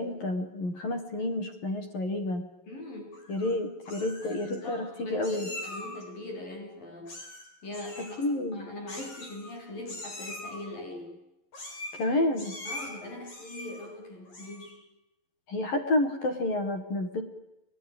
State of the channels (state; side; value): late; right; 11 ms